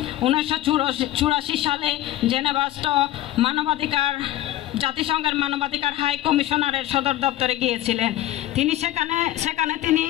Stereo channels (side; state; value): right; quieter; 14.3 dB